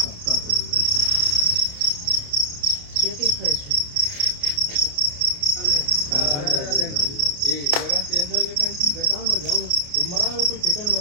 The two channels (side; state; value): left; late; 28 ms